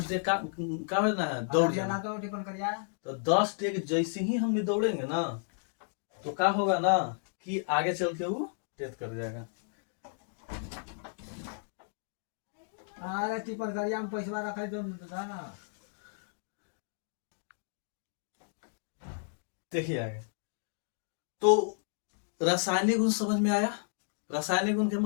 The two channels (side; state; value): right; silent; digital silence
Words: डेग का ना है दौड़ जाना। तो 10 डेग जैसे ही हम दौड़ेंगे ना, तो क्या होगा ना कि आगे चल के वो डेथ कर जाएगा। अरे टिपर गरिया में पैसा रखा तो ना, देखिए आगे। तो रासायनिक गुण समझ में आया। रासायनिक गुण के